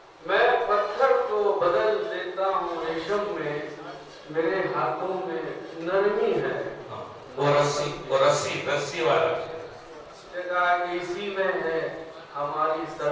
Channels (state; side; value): identical; both; correlation 1.00